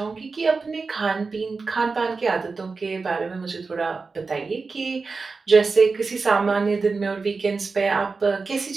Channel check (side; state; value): left; quieter; 4.3 dB